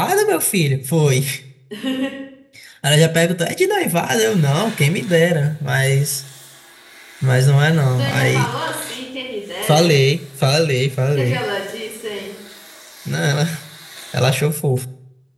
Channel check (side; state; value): both; identical; correlation 1.00